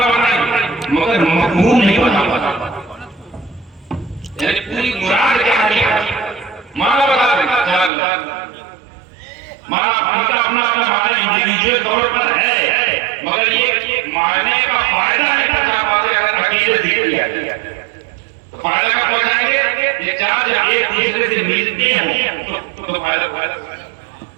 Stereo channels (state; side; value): drops out; left; at 7.9 s